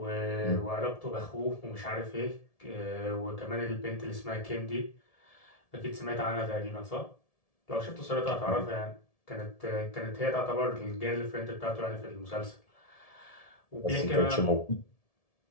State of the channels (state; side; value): late; right; 1.7 ms